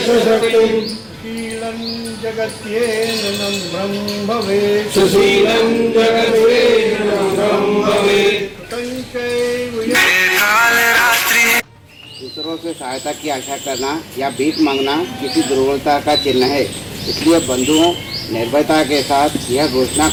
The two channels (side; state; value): both; identical; correlation 1.00